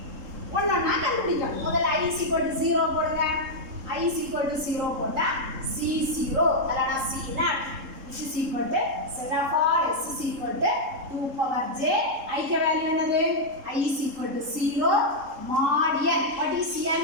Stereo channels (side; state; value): left; late; 3.7 ms